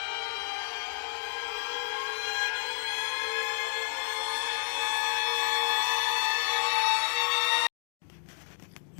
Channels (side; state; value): right; silent; digital silence